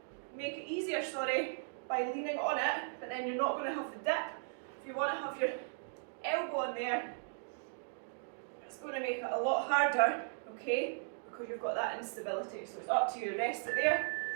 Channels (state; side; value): silent; left; digital silence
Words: make it easier, sorry, by leaning on it, but then you're not going to have the dip. If you want to have your elbow on there, it's going to make it a lot harder, okay, because you've got that instability. So it's up to you, rest it there.